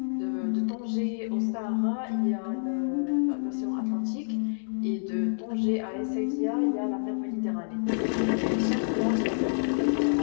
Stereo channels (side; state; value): right; silent; digital silence